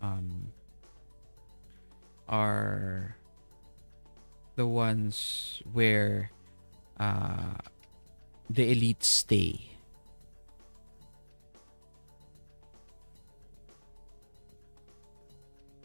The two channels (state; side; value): inverted; both; correlation -1.00